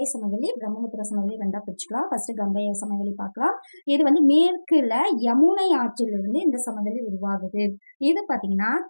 சமவெளி, பிரம்மபுத்திர சமவெளி ரெண்டா பிரிச்சுக்கலாம். ஃபர்ஸ்ட் கங்கை சமவெளி பார்க்கலாம். இது வந்து மேற்குல யமுனை ஆற்றிலிருந்து இந்த சமவெளி உருவாகுது. இது பாத்தீங்கன்னா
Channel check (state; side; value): inverted; both; correlation -1.00